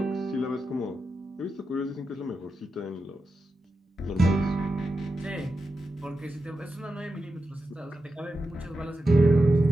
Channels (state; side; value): normal; both; correlation 0.90